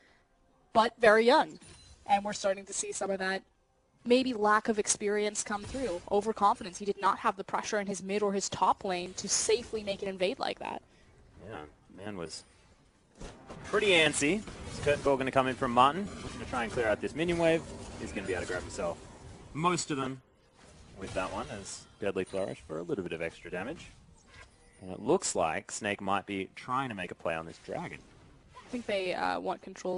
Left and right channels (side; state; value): both; identical; correlation 1.00